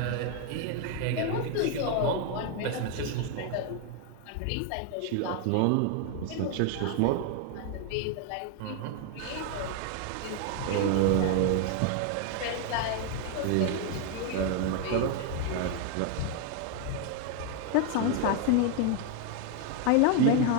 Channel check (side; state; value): both; different; correlation 0.01